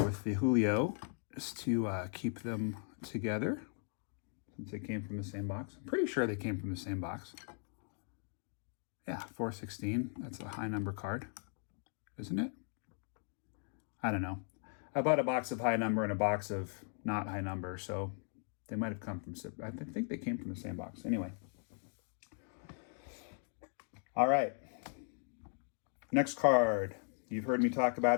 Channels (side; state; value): right; silent; 52 dB below the other